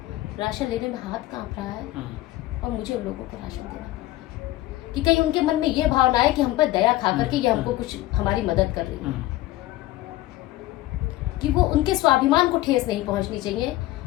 राशन लेने में हाथ कांप रहा है, और मुझे उन लोगों को राशन देना कि कहीं उनके मन में ये भावना है कि हम पर दया खा करके ये हमको कुछ हमारी मदद कर रही है, कि वो उनके स्वाभिमान को ठेस नहीं पहुंचनी चाहिए।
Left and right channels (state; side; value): quieter; right; 16.6 dB